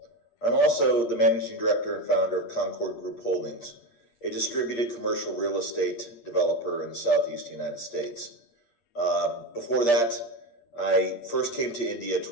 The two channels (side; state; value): right; late; 8.5 ms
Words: I'm also the Managing Director and founder of Concord Group Holdings, a distributed commercial real estate developer in the Southeast United States. Before that, I first came to India